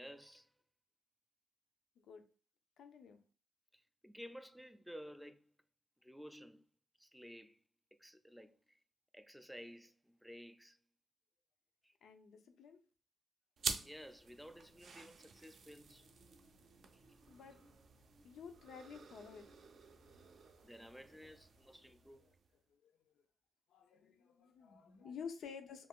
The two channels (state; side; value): normal; both; correlation 0.78